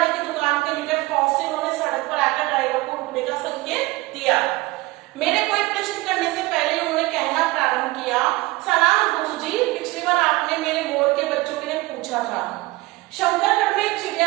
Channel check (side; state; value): left; quieter; 21.0 dB